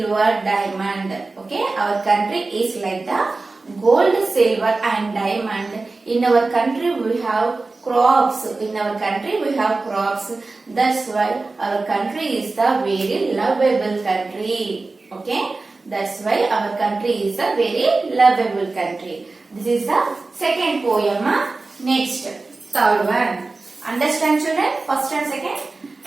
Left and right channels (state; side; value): quieter; left; 3.6 dB